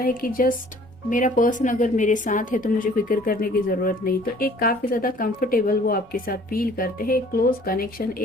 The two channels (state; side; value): normal; both; correlation 0.54